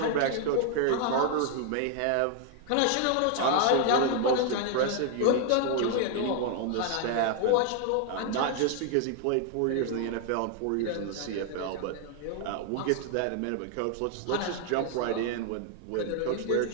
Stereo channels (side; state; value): both; different; correlation 0.00